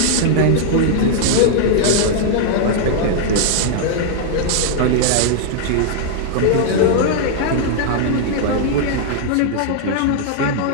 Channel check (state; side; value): different; both; correlation -0.01